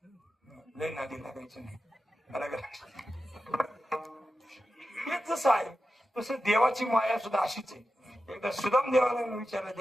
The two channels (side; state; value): both; normal; correlation 0.92